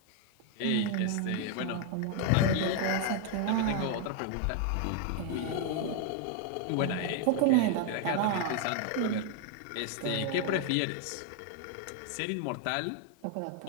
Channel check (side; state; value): both; different; correlation 0.01